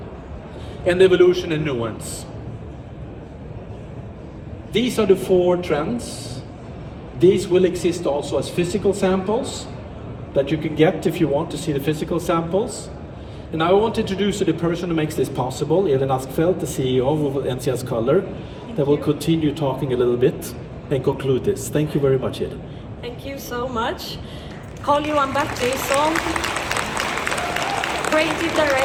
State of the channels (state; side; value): identical; both; correlation 1.00